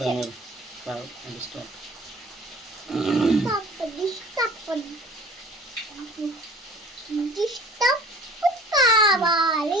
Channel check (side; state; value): both; normal; correlation 0.47